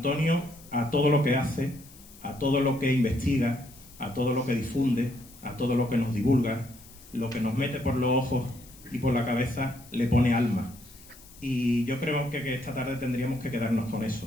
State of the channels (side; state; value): left; noise; hiss, 22 dB below the sound